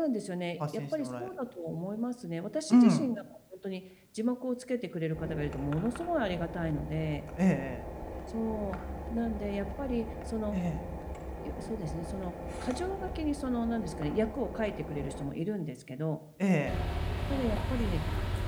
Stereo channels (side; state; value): both; identical; correlation 1.00